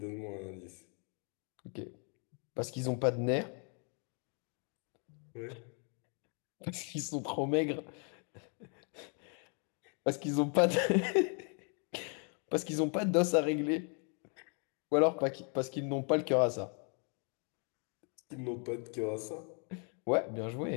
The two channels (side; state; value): right; quieter; 39.3 dB